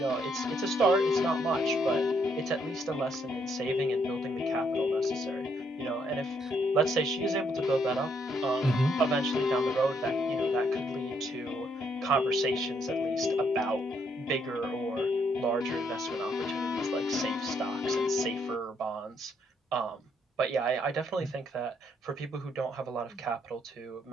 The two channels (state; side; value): normal; both; correlation 0.72